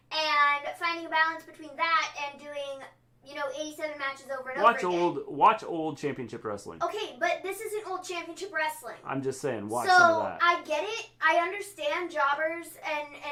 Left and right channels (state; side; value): identical; both; correlation 1.00